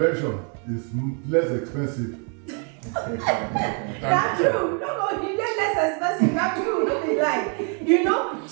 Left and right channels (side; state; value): left; quieter; 39.8 dB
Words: is less expensive. That's true. No, you get less expensive. That's true. No be lie. You know.